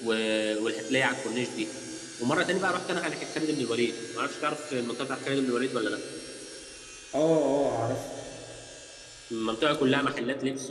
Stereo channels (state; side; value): identical; both; correlation 1.00